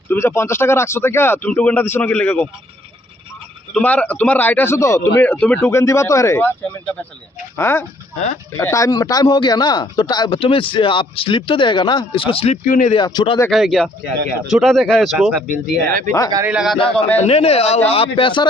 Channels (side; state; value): both; normal; correlation 0.64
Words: তুমি যে 50 টাকা রাখছো থেকে তুমি টোকেনটা দিছো না কি লেগে তোমার राइट है तो तुम्हें टोकन दिवा तो है हाँ टाइम टाइम हो गया ना तो तुम्हें आप स्लिप तो देगा ना इसको स्लिप क्यों नहीं दिया छोटा देखा है क्या छोटा देखा है इसको बिल दिया है गाड़ी लगा था तो नहीं आप पैसा